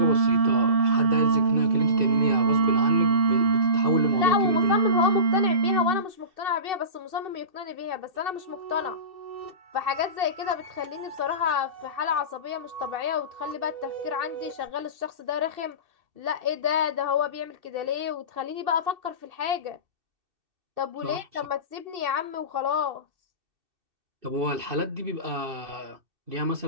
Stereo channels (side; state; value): left; late; 2.6 ms